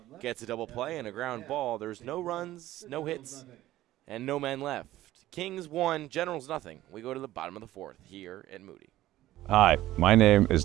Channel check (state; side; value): quieter; left; 15.0 dB